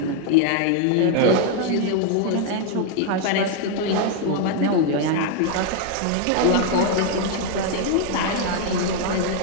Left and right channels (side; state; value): both; different; correlation 0.00